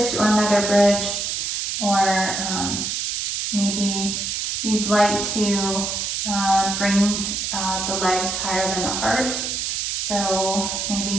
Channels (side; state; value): right; noise; hiss, 1 dB below the sound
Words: or another bridge, or maybe you'd like to bring the legs higher than the heart. So